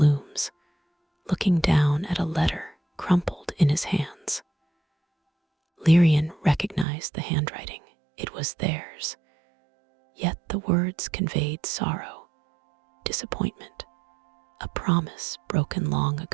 looking down at a letter crumpled in his hands. Lyrian recognized the handwriting. It was theirs, yet the words conveyed sorrow, disappointment, a promise broken long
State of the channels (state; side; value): drops out; left; at 6.9 s